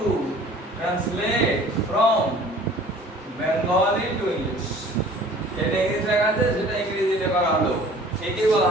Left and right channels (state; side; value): normal; both; correlation 0.49